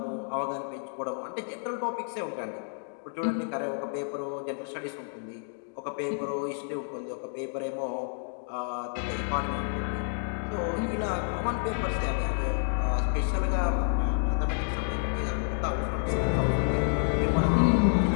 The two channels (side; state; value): right; silent; digital silence